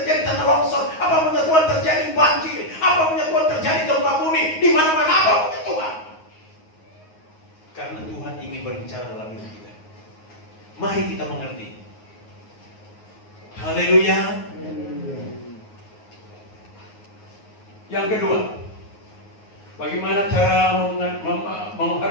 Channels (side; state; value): right; late; 9.5 ms